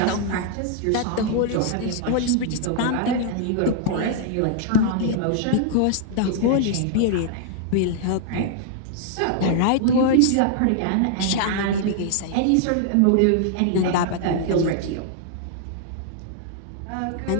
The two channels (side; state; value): both; different; correlation -0.01